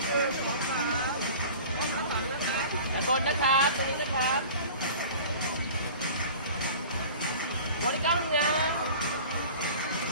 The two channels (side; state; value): both; inverted; correlation -0.41